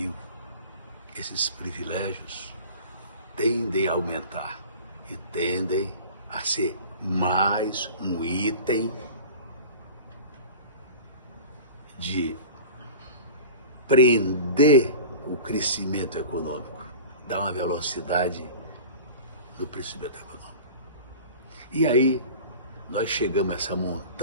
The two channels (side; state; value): both; inverted; correlation -0.37